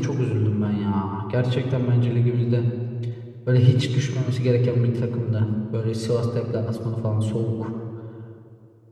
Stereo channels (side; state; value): both; identical; correlation 1.00